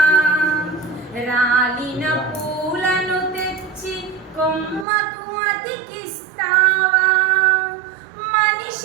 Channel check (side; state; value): left; drops out; at 4.9 s